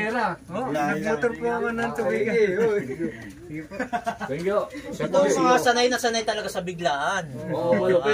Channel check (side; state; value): both; identical; correlation 1.00